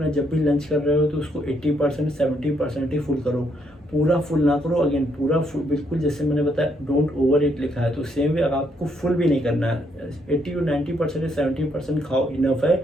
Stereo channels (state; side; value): normal; both; correlation 0.73